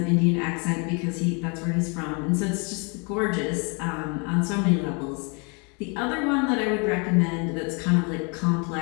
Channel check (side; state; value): right; quieter; 33.7 dB